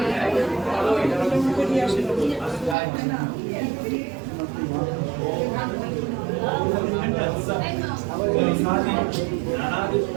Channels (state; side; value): drops out; left; at 2.8 s